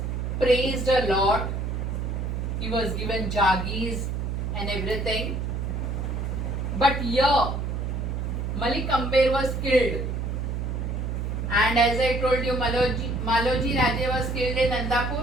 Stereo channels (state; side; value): noise; right; hum, 2 dB below the sound